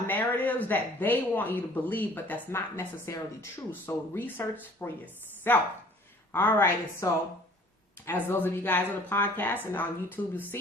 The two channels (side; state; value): both; normal; correlation 0.53